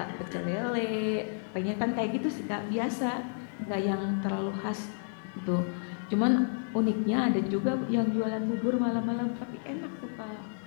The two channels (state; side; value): silent; right; digital silence